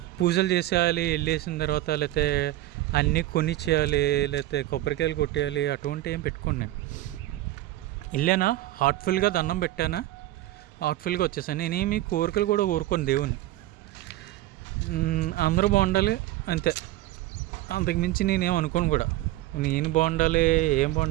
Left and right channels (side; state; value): left; quieter; 16.0 dB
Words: పూజలు చేసేయాలి, వెళ్ళేసిన తర్వాత లేకపోతే అన్నీ కొనిచ్చేయాలి, లేకపోతే కొబ్బరికాయలు కొట్టేయాలి, అటువంటి ఏం పెట్టుకోండి. నేను వెళ్ళానా, హార్ట్ఫుల్గా దండం పెట్టానా, హార్ట్ఫుల్గా వచ్చేసాను. నేనేమి కోరికలు కూడా కోరుకోను దేవుని, అందరూ బాగుండాలి అంతే, అంతకుమించి నేనేం అనుకోను కూడా. నేను